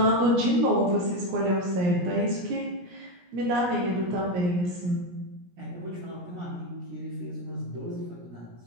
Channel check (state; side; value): late; left; 17 ms